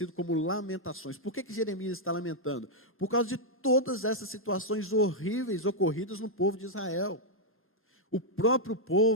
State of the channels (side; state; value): both; normal; correlation -0.04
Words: como Lamentações. Por que Jeremias está lamentando? Por causa de todas essas situações horríveis ocorridas no povo de Israel. O próprio